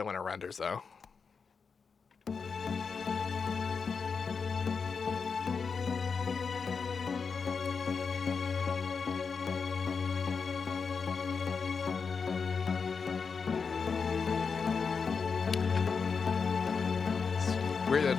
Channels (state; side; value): quieter; right; 5.5 dB